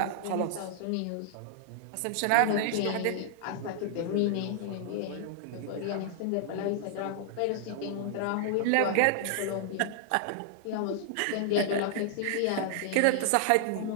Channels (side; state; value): both; different; correlation 0.00